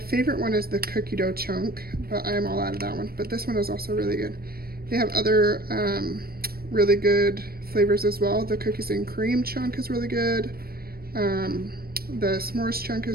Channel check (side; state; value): left; late; 0.44 ms